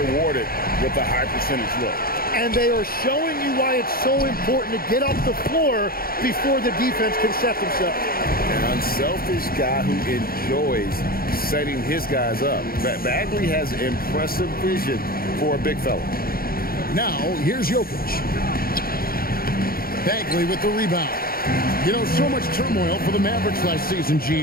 with a high percentage look. And they are showing you why it's so important to get off the floor before the defense can set themselves. An unselfish guy who enjoys setting his guys up. Bagley has impressive vision for a big fella. Now, here's Jokic. Bagley with the rebound. You know, so much turmoil for the Mavericks last season,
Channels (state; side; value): late; right; 0.43 ms